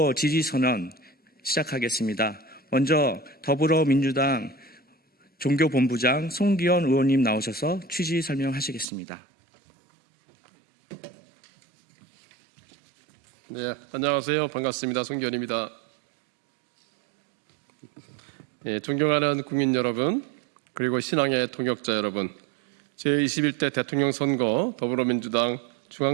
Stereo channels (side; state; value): left; drops out; at 8.8 s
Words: 지지선언 시작하겠습니다. 먼저 더불어민주당 종교본부장 송기현 의원님 나오셔서 취지 설명하시겠습니다. 네, 안녕하세요. 반갑습니다. 송기현입니다. 존경하는 국민 여러분, 그리고 신앙의 동역자 여러분, 제21대 대통령 선거 더불어민주당